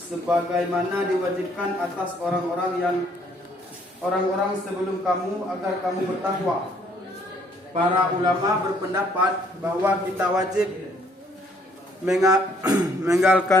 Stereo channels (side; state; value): both; normal; correlation 0.65